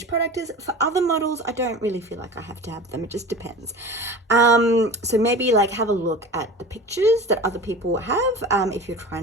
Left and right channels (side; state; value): both; normal; correlation 0.35